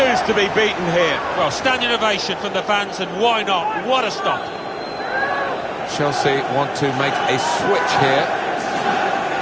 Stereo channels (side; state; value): both; identical; correlation 1.00